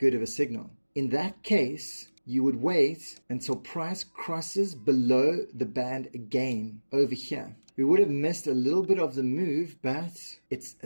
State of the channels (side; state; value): both; inverted; correlation -1.00